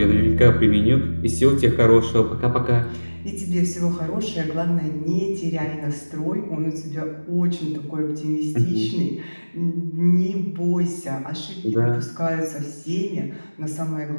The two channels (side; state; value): both; inverted; correlation -1.00